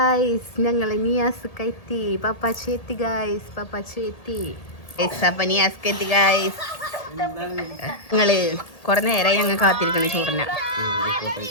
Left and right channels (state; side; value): late; right; 1.8 ms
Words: ഞങ്ങൾ നിയാസ്ക്ക് എത്തി, പപ്പാച്ചി എത്തി ഗൈസ്, പപ്പാച്ചി എത്തി. അപ്പം നിയാസ്ക്ക് എത്തി ഗൈസ്. ഞങ്ങൾ കുറെ നേരമായി ഞങ്ങൾ കാത്തിരിക്കണം ചോറിന.